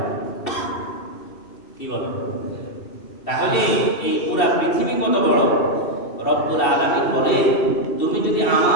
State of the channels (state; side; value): late; right; 2.7 ms